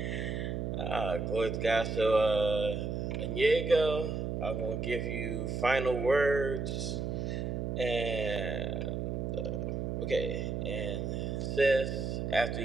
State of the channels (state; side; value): noise; right; hum, 2 dB below the sound